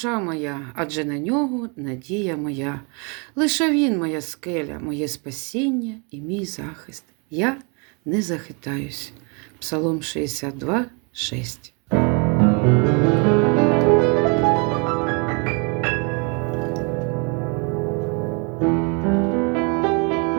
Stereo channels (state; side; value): quieter; left; 34.1 dB